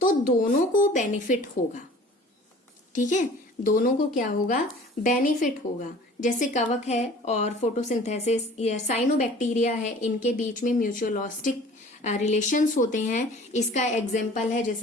तो दोनों को बेनिफिट होगा। ठीक है, दोनों को क्या होगा, बेनिफिट होगा। जैसे कवक है और फोटोसिंथेसिस या साइनोबैक्टीरिया है, इनके बीच में म्यूचुअलिस्टिक रिलेशंस होते हैं। इसका एग्जाम्पल है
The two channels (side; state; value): both; normal; correlation 0.47